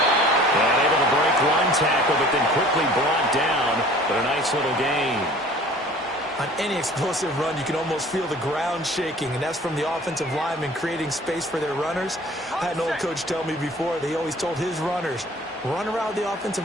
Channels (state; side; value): normal; both; correlation 0.48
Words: And able to break one tackle, but then quickly brought down. But a nice little gain. On any explosive run, you can almost feel the ground shaking, and that's from the offensive linemen creating space for their runners. I had an old coach tell me before, they always told his runners, run around the offensive